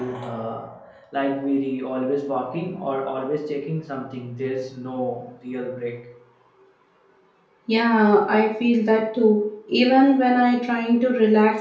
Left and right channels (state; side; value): identical; both; correlation 1.00